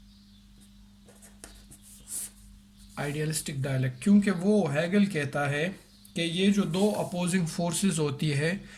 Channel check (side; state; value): both; identical; correlation 1.00